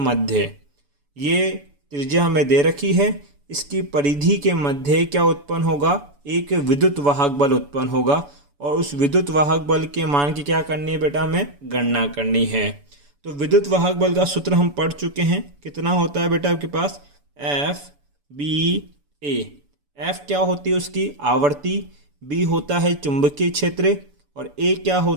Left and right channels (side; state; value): left; late; 7.0 ms